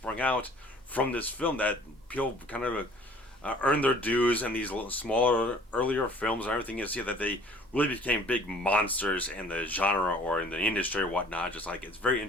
out from this film that people kind of earned their dues in these smaller, earlier films and everything. You see that they really became big monsters in the genre or in the industry or whatnot. Just like, it's very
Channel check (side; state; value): both; normal; correlation 0.53